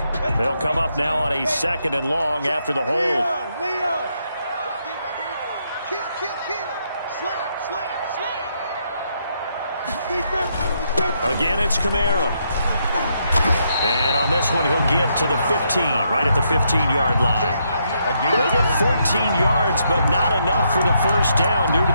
They'll come up now on a 2nd and long after the hold. Leo. Kill. Slam. Again, it's Camara. And on this one, he'll get to the 15, right at the 15-yard line. They get 14 yards, but not enough for the first down due to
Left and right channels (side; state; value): both; inverted; correlation -0.77